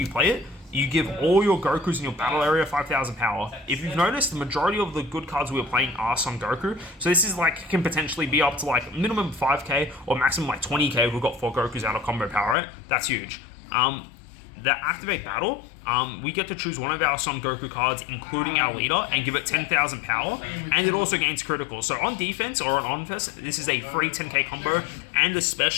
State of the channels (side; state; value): right; drops out; at 12.6 s